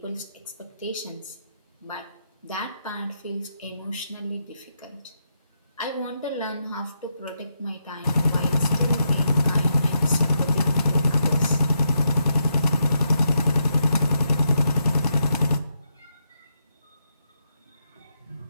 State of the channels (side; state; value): both; inverted; correlation -0.81